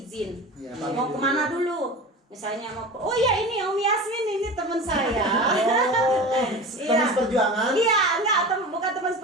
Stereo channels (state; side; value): normal; both; correlation 0.32